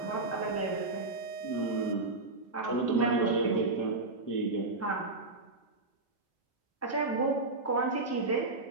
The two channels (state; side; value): quieter; left; 3.3 dB